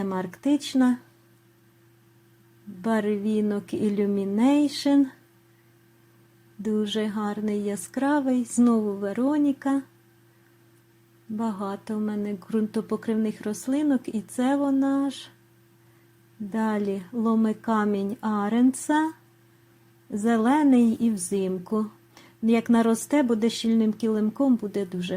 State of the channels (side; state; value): both; identical; correlation 1.00